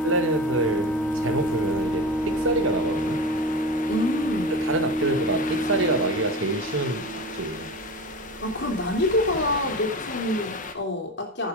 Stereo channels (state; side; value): normal; both; correlation 0.29